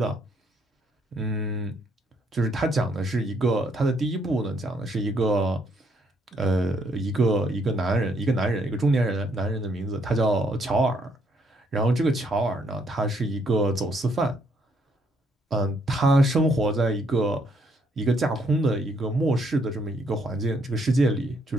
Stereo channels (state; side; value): normal; both; correlation 0.71